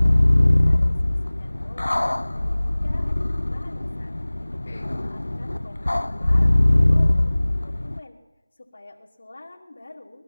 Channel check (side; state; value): both; inverted; correlation -1.00